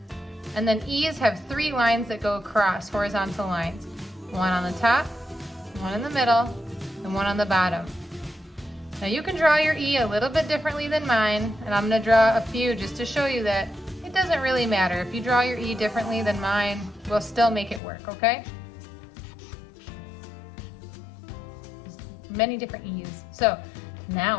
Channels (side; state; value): right; drops out; at 17.8 s